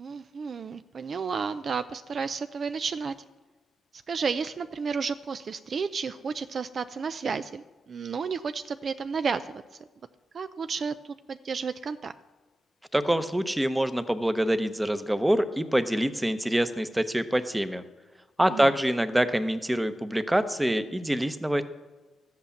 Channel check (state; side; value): normal; both; correlation 0.95